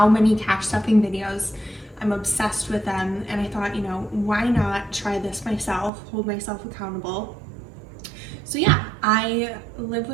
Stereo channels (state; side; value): drops out; left; at 5.9 s